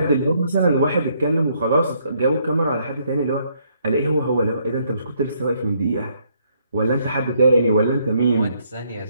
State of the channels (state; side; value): inverted; both; correlation -0.70